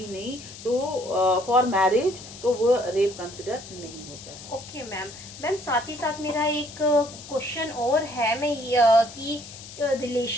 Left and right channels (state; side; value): noise; left; hiss, 15 dB below the sound